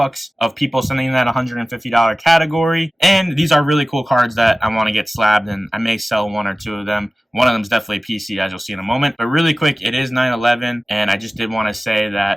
of people sending in that $150 category. And these are really cool cards that I want to get slabbed, and I may sell one or two of them. One of them is definitely a PC, as you'll see in a moment. But really quick, it is 9/11, and I just did want to say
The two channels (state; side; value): normal; both; correlation 0.96